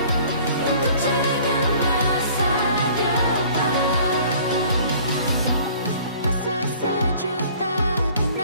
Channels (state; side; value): inverted; both; correlation -0.52